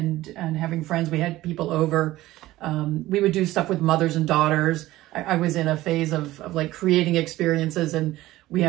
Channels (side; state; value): left; quieter; 16.6 dB